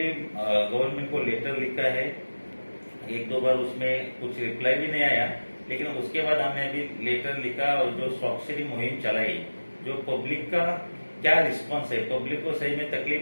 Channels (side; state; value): both; inverted; correlation -1.00